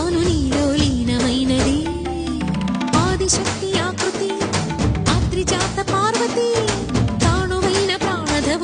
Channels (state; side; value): identical; both; correlation 1.00